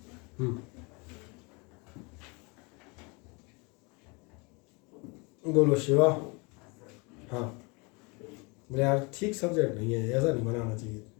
बोलो शिवा। हाँ बोले यार ठीक सब्जेक्ट नहीं है, ऐसा नहीं बनाना चाहिए,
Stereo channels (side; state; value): right; quieter; 29.7 dB